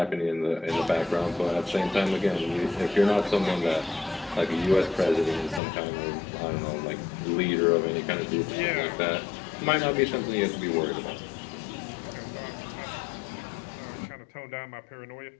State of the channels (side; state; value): right; drops out; at 5.6 s